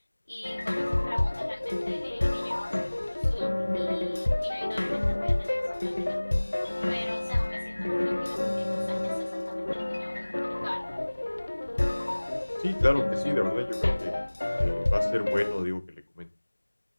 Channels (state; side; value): inverted; both; correlation -1.00